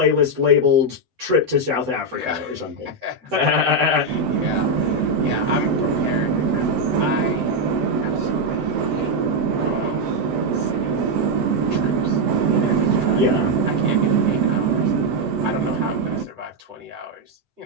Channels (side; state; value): left; late; 7.9 ms